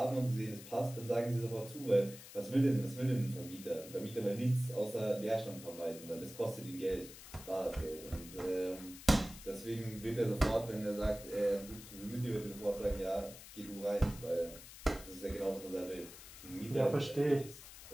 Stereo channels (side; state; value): left; noise; hiss, 15 dB below the sound